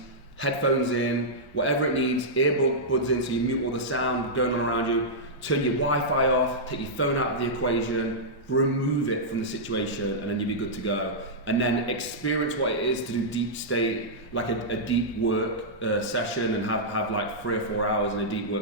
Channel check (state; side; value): normal; both; correlation -0.11